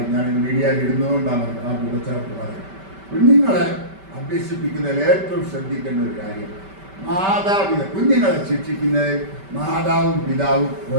ഞാൻ മീഡിയയിൽ ഇടുന്നതുകൊണ്ടാണ് ആ കൂടച്ചേർത്ത് പറയുന്നത്. കുഞ്ഞുങ്ങളെ അഭ്യസിപ്പിക്കുന്നതിൽ ഏറ്റവും ശ്രദ്ധിക്കേണ്ട ഒരു കാര്യം, കുഞ്ഞുങ്ങളെ ശിക്ഷിക്കുന്നതിൽ മാതാവും പിതാവും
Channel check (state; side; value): late; left; 5.2 ms